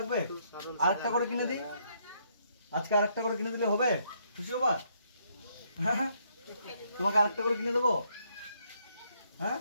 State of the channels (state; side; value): inverted; both; correlation -0.71